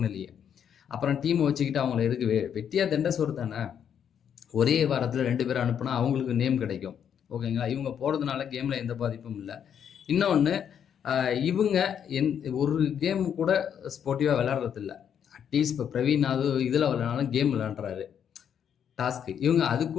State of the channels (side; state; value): right; quieter; 8.5 dB